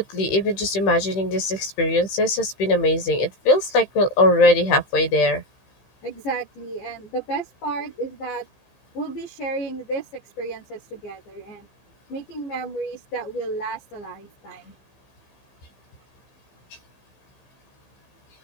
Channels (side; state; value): right; late; 15 ms